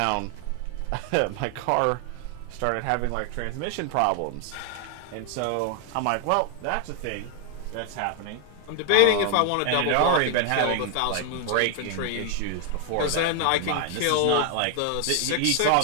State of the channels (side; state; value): both; different; correlation 0.00